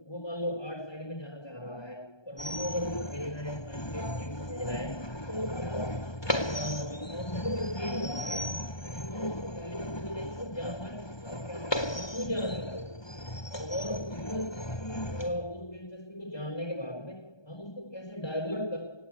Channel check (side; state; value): right; late; 1.2 ms